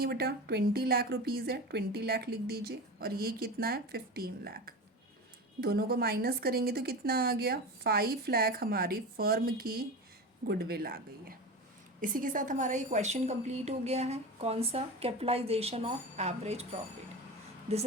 है बेटा, 20 लाख रुपीज़ है, 20 लाख लिख दीजिए, और ये कितना है 15 लाख। दोनों को माइनस करेंगे तो कितना आ गया 5 लाख, हमारी फर्म की गुडविल आ गई है। इसी के साथ हमारा ये क्वेश्चन कंप्लीट हो गया है। कौन सा, capitalisation of average profit, this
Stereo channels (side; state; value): both; normal; correlation 0.27